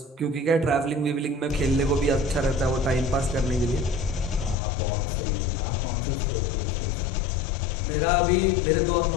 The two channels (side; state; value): right; drops out; at 4.5 s